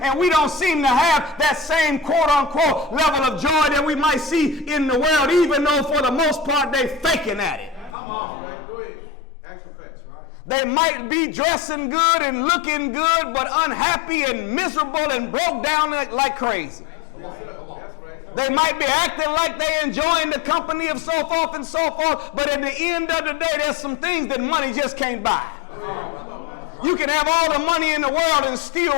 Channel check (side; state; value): right; drops out; at 7.9 s